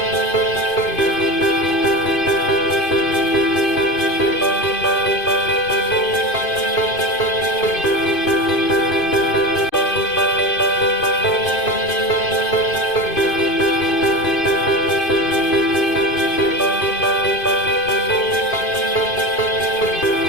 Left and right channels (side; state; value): right; late; 2.5 ms